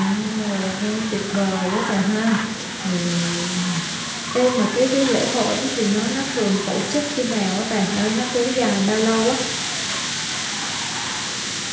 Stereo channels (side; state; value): both; identical; correlation 1.00